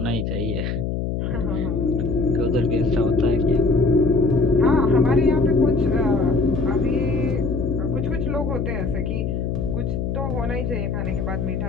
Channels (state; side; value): noise; left; hum, 2 dB below the sound